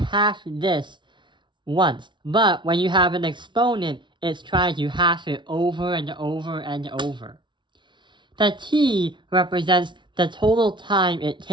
this once. But when you have an exponent, it's trying to half it over and over and over. The T represents the total time it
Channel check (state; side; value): late; left; 0.23 ms